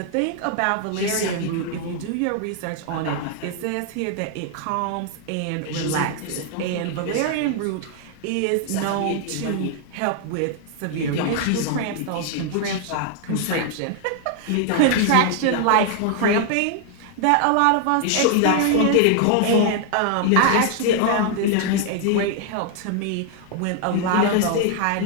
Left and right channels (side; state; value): both; different; correlation 0.00